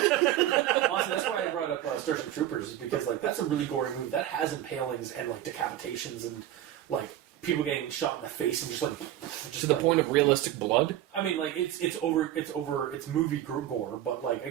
Honestly, that's why I brought up Starship Troopers, is because like that's a really gory movie that has impalings and like decapitations and like people getting shot in the face and just To the like, point of realistic blood? I mean, like it's movie gore, but like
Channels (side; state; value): left; quieter; 12.5 dB